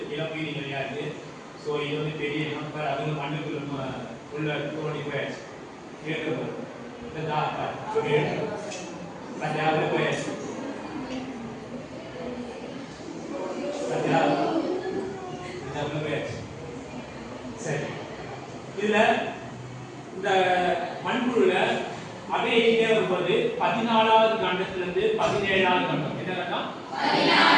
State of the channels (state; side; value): identical; both; correlation 1.00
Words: இளம் உயிரி நிறையா இருக்கு. ஸோ இது வந்து பெரிய இனம், அது மண்ணுக்குள்ள உள்ள தோண்டி போயாச்சு கேட்கப்படுது. சரி, இதுல இந்த மண்புழுல அப்படியே வரும்போது 14வது கண்டத்திலிருந்து 17வது கண்டம் என்ன கண்டம்?